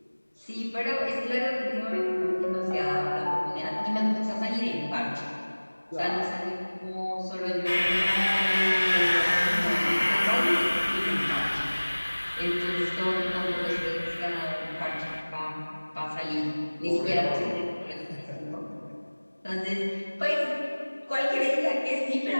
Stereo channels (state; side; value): inverted; both; correlation -1.00